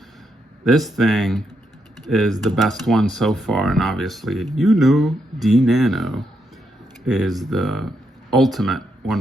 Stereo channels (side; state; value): both; normal; correlation 0.80